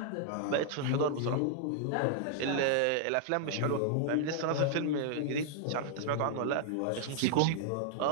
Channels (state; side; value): different; both; correlation -0.01